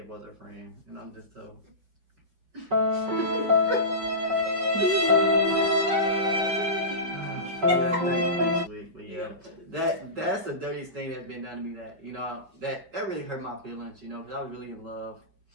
was her friend, and I'm just so. That's the dirtiest thing that's been done to me. That you know that really hurt my feelings. You know, because I was really in love.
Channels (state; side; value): late; left; 5.4 ms